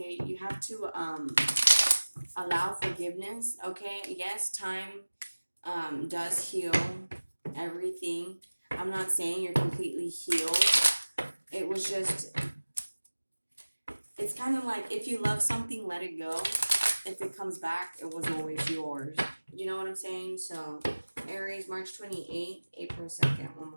You have to allow forgiveness, okay? Yes, time does heal everything. I'm not saying you're completely healed. It was just, it's kind of like, if you love something, let it go. If it comes back, it was always yours. You know what I'm saying? So, Aries, March 28th, April 2nd. One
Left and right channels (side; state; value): both; inverted; correlation -1.00